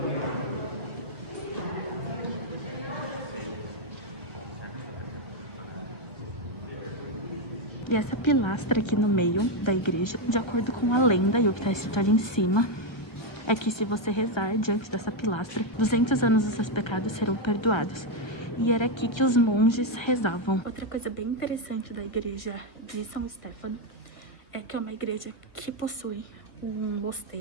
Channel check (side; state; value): right; late; 1.3 ms